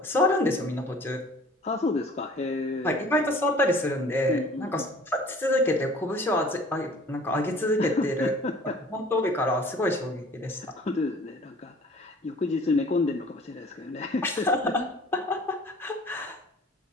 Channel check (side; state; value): both; normal; correlation 0.49